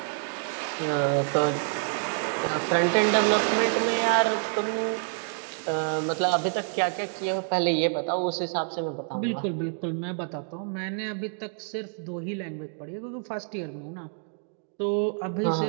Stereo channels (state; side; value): silent; left; 57 dB below the other